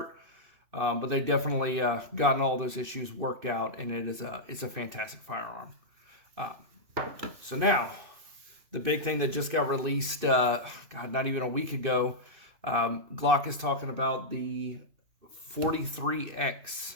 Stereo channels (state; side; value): late; left; 2.6 ms